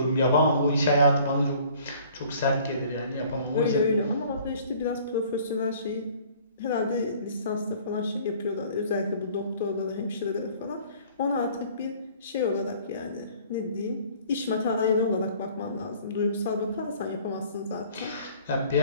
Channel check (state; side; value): inverted; both; correlation -0.53